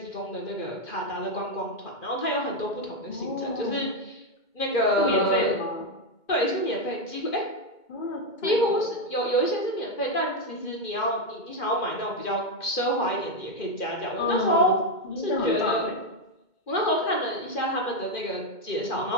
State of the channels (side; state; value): right; late; 2.2 ms